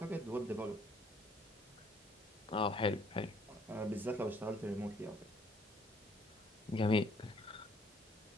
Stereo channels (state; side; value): normal; both; correlation 0.63